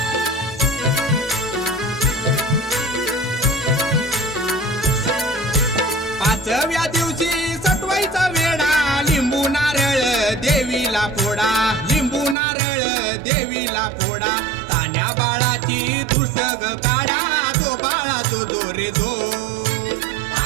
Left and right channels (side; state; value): left; drops out; at 12.4 s